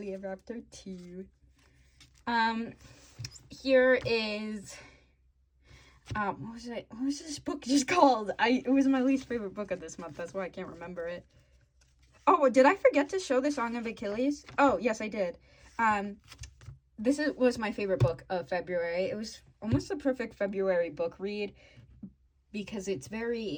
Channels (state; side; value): identical; both; correlation 1.00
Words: ever after too. Here is what was this book just called? It was my least favorite book of this month. That's why I can't remember it. Oh, did I forget to show the Song of Achilles? Oh, yes, I did. This was my favorite book of February. It was almost a perfect February book read because it's